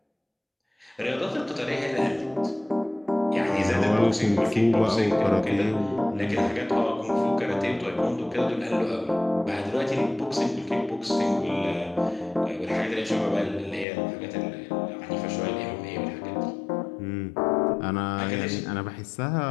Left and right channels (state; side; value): drops out; right; at 13.9 s